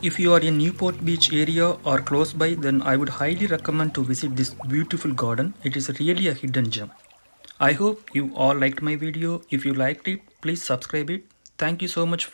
if you are in Newport Beach area or close by, then I would highly recommend to visit this beautiful garden. It is really a hidden gem. I hope you all liked my video. If you liked it, please subscribe it. Thank you so much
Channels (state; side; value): inverted; both; correlation -1.00